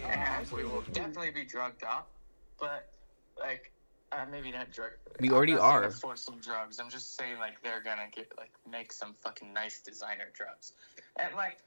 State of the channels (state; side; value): inverted; both; correlation -1.00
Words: we will definitely be drugged up, but like maybe not drug. We already are. For some drugs, I'm just saying like they're gonna get like make some fucking nice designer drugs, and like